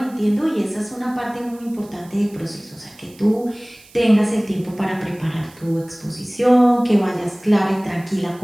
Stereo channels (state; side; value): noise; right; hiss, 25 dB below the sound